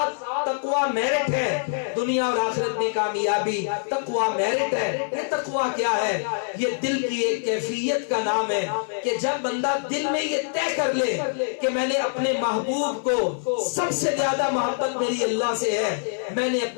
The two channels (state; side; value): silent; right; 62 dB below the other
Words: تقوی میرٹ ہے، دنیا اور آخرت میں کامیابی تقوی میرٹ ہے۔ یہ تقوی کیا ہے؟ یہ دل کی ایک کیفیت کا نام ہے کہ جب بندہ دل میں یہ طے کر لے کہ میں نے اپنے محبوب کو سب سے زیادہ محبت میری اللہ سے ہے، میں نے